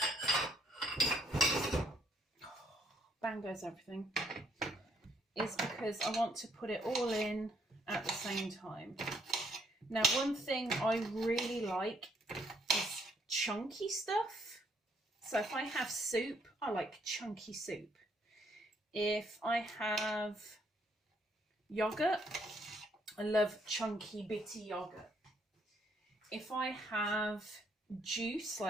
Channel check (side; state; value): both; normal; correlation 0.69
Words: bang goes everything, is because I want to put it all in at the same time. Now, one thing I really like is chunky stuff. So if I have soup, I like chunky soup. If I have yogurt, I love chunky bitty yogurt. If I have juice,